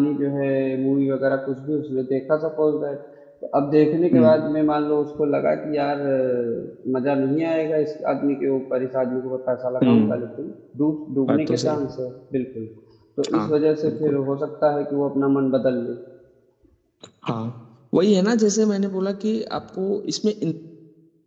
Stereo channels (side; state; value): both; identical; correlation 1.00